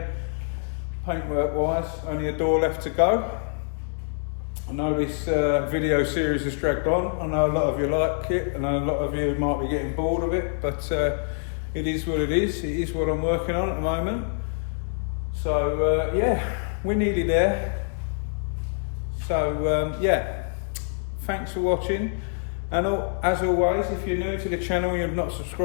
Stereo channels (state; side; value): silent; right; digital silence